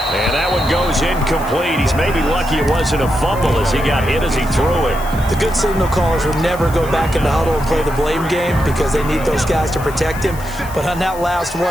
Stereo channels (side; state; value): left; noise; hiss, 17 dB below the sound